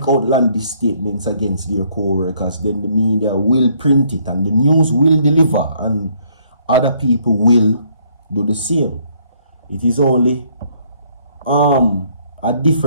outlandish statements against their co-workers, then the media will print it and the news will deliver, and other people will do the same. It is only a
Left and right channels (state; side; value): inverted; both; correlation -0.66